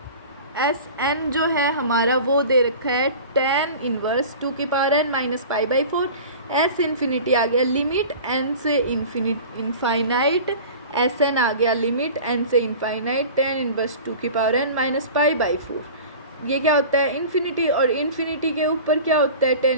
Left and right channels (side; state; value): both; inverted; correlation -0.38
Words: SN जो है हमारा वो दे रखा है tan इनवर्स 2 की power n minus π/4। S infinity आ गया लिमिट n से इनफाइनाइट, SN आ गया लिमिट n से इनफाइनाइट tan इनवर्स 2 की पावर n माइनस π/4। ये क्या होता है, इन्फिनिटी, और इन्फिनिटी के ऊपर क्या होता है, tan